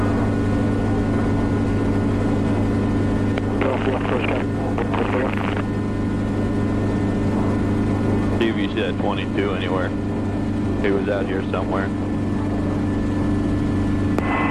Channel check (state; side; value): identical; both; correlation 1.00